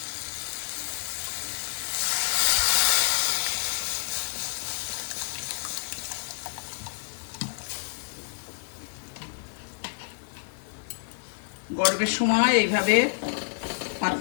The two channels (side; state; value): right; silent; 59 dB below the other